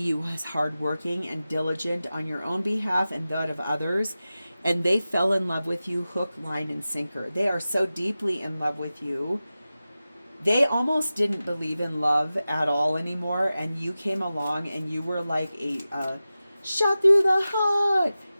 as hardworking and diligent on your own behalf and that of others. And they fell in love with you hook, line, and sinker. They are so deeply in love with you. They almost didn't believe in love at all anymore. And you came along and you were like a shot through the heart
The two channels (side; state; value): both; inverted; correlation -0.95